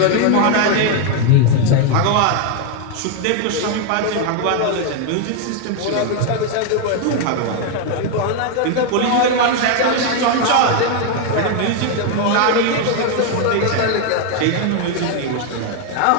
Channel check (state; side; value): different; both; correlation 0.01